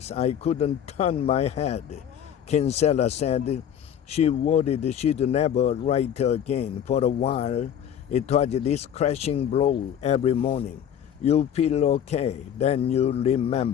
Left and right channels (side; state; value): right; quieter; 9.3 dB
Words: I couldn't turn my head. Kinsella said she worried she'd never write again. For a while, it was this crashing blow every morning. You feel okay, then you